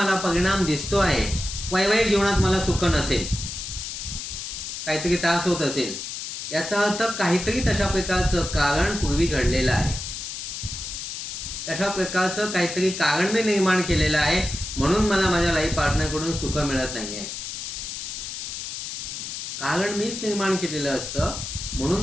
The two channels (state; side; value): noise; left; hiss, 7 dB below the sound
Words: परिणाम दिसतो आहे, वैवाहिक जीवनात मला सुख नसेल, काहीतरी त्रास होत असेल, याचा अर्थ काहीतरी तशा प्रकारचं कारण पूर्वी घडलेलं आहे. तशा प्रकारचं काहीतरी कारण मी निर्माण केलेलं आहे म्हणून मला माझ्या लाईफ पार्टनरकडून सुख मिळत नाहीये. कारण मीच निर्माण केलेलं असतं